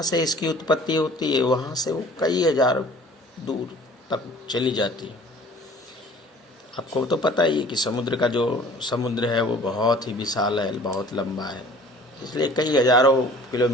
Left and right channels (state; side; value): normal; both; correlation 0.49